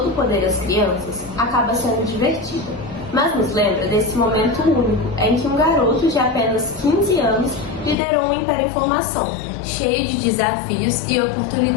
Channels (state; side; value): drops out; right; at 8.0 s